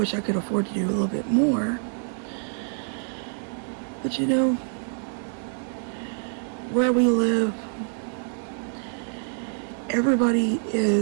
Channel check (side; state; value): left; silent; 61 dB below the other